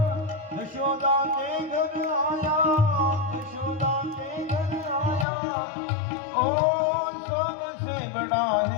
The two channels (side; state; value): right; drops out; at 5.2 s